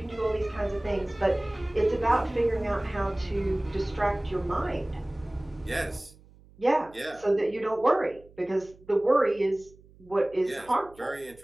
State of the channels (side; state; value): right; noise; hum, 25 dB below the sound